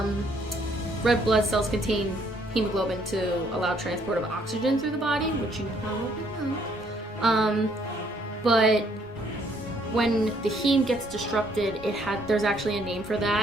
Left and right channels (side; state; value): both; normal; correlation 0.66